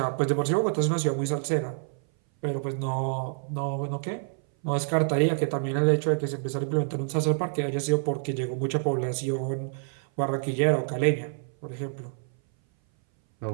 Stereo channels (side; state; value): left; silent; 58 dB below the other